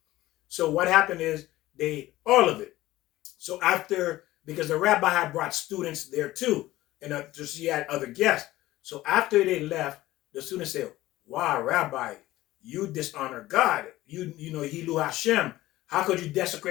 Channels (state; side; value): quieter; right; 16.6 dB